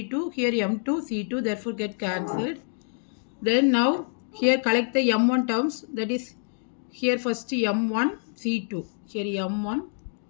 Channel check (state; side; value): silent; right; digital silence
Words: here m2 c2, therefore get cancelled. Then now here collect the m1 terms, that is here first m1 c2, here m1